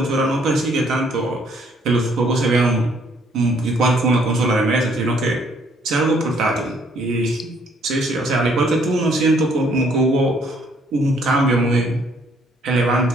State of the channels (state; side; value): normal; both; correlation 0.65